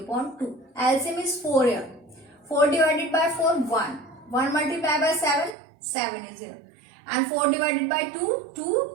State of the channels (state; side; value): drops out; left; at 5.6 s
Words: 2. LCM is 4 here. 4 divided by 4, 1. 1 multiplied by 7, 7 is here. And 4 divided by 2, 2.